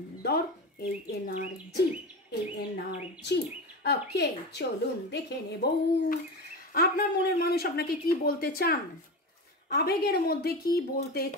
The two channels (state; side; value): normal; both; correlation 0.24